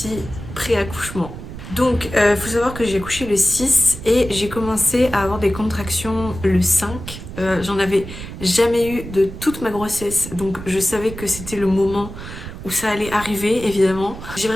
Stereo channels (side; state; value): right; noise; rumble, 11 dB below the sound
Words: pré-accouchement. Donc faut savoir que j'ai accouché le 6 et j'ai commencé à avoir des contractions le 5. J'en avais jamais eu de toute ma grossesse, donc je savais que c'était le moment où ça allait arriver évidemment. J'ai